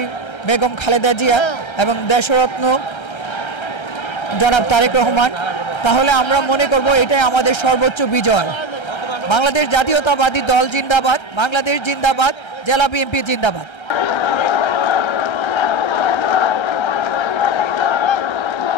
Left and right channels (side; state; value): right; late; 1.3 ms